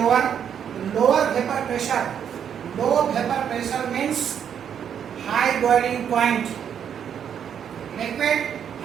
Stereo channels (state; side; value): quieter; left; 8.5 dB